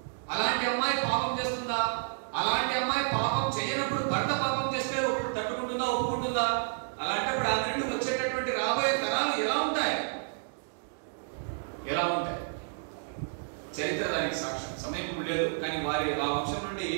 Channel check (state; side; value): silent; left; digital silence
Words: అలాంటి అమ్మాయి పాపం చేస్తుందా, అలాంటి అమ్మాయి పాపం చేయనప్పుడు భర్త పాపం చేస్తే తట్టుకుంటుందా, ఒప్పుకుంటుందా? అలాంటప్పుడు ఆ నుండి వచ్చేటటువంటి రాబోయే తరాలు ఎలా ఉంటాయి, ఎలా ఉంటాయి? చరిత్ర దానికి సాక్ష్యం. సమయం ఇప్పుడు లేదు, కానీ వారి ఆ వంశం నుండి